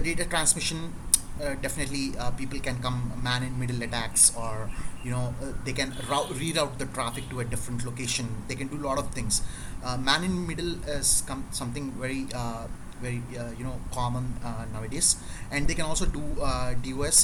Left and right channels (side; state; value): both; identical; correlation 1.00